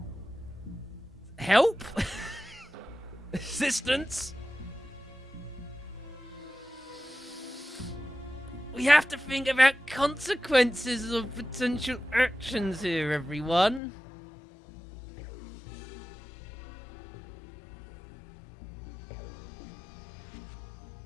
Help? Assistance? We have to think about consequences of potential actions here, everyone.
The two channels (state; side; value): drops out; right; at 13.8 s